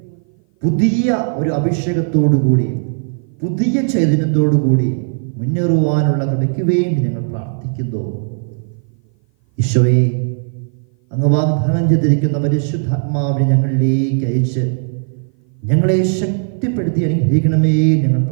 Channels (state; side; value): silent; left; 57 dB below the other